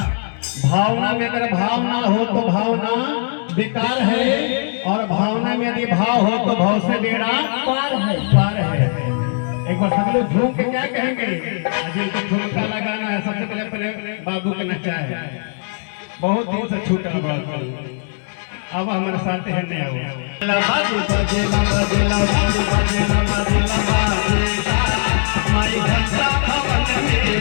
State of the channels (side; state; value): right; silent; digital silence